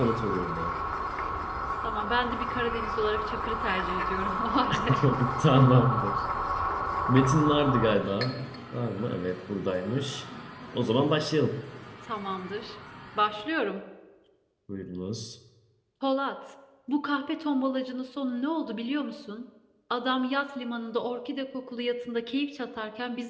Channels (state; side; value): identical; both; correlation 1.00